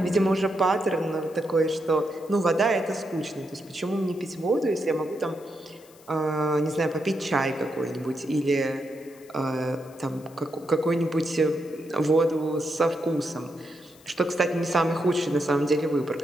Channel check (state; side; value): noise; left; hiss, 26 dB below the sound